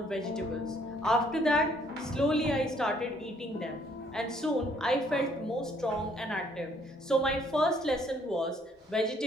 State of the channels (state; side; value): normal; both; correlation 0.64